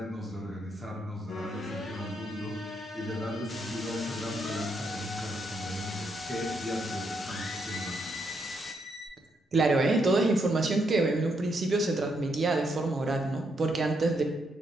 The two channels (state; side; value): normal; both; correlation 0.78